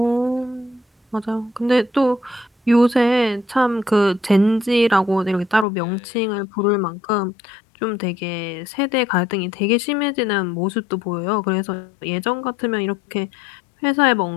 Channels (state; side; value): drops out; right; at 5.7 s